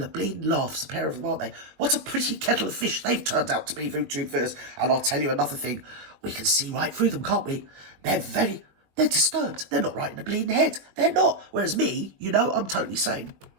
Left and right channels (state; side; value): late; left; 21 ms